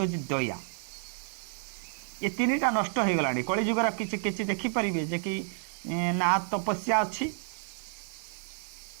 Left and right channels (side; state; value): left; silent; digital silence